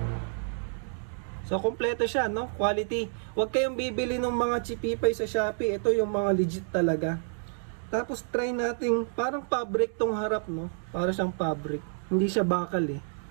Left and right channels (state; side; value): silent; left; digital silence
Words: So, kompleto siya, no? Quality. Huwag kayong bibili ng mga chipipay sa Shopee. Ito yung mga legit talaga. Tapos, try natin, parang fabric tong harap, no? Para siyang fabric. Hindi siya bakal, eh.